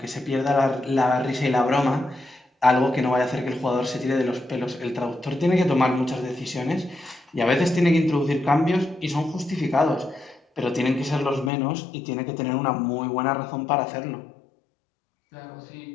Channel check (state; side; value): drops out; right; at 11.5 s